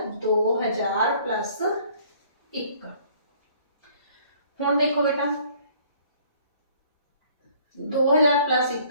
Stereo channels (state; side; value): inverted; both; correlation -0.57